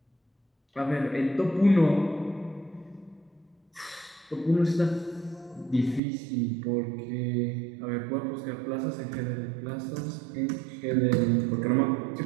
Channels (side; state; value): left; drops out; at 6.0 s